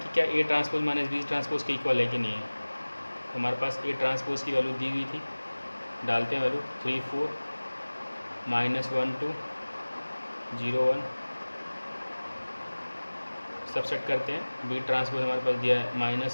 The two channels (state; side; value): inverted; both; correlation -1.00